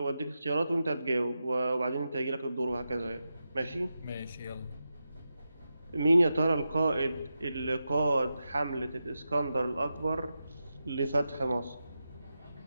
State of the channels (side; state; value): both; inverted; correlation -0.90